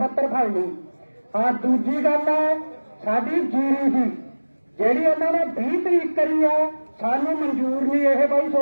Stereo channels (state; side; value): inverted; both; correlation -1.00